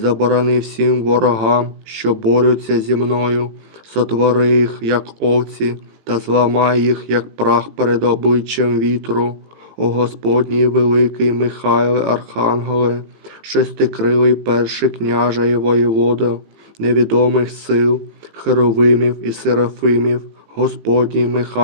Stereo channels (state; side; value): late; left; 18 ms